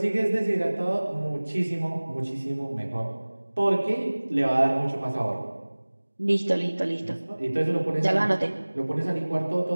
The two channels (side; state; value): both; inverted; correlation -1.00